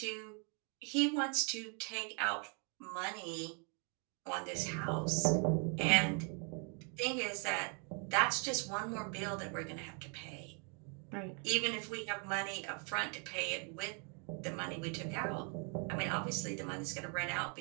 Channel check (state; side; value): quieter; left; 38.0 dB